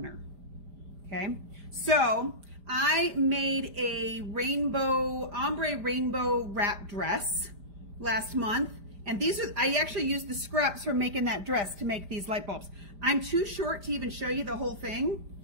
okay? So I made a ombre rainbow wrap dress last month, and I actually used the scraps from making that dress to make these light bulbs. I'm too short to even show you the whole thing,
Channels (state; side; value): late; left; 5.0 ms